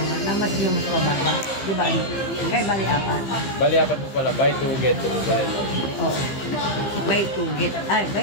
na mas yung mas mababa. Diba? Kaya bali apat. Bali, apat po pala, buy two, get two po pala yun. Oo. Buy two, get. Ay,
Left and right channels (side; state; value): right; late; 15 ms